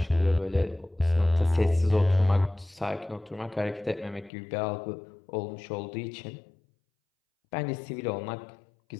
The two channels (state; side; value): drops out; right; at 4.3 s